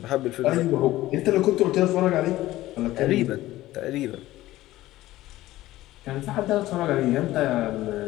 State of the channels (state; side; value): quieter; right; 16.1 dB